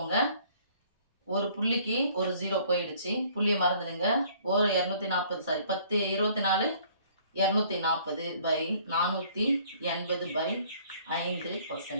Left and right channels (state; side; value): inverted; both; correlation -0.57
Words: ஒரு புள்ளிக்கு ஒரு 0 போயிடுச்சு, புள்ளியை மறந்துடுங்க. ஒரு 240 சாரி 10 24